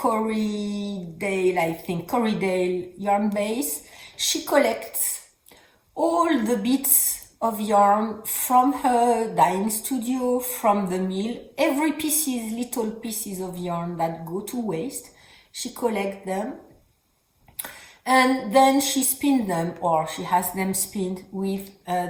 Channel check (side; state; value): both; identical; correlation 1.00